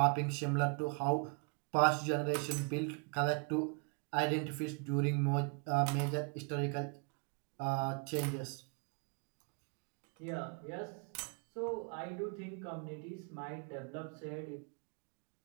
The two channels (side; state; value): left; quieter; 33.8 dB